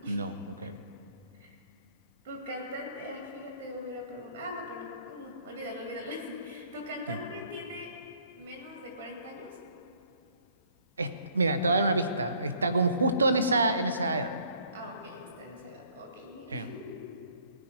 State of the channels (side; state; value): both; inverted; correlation -0.60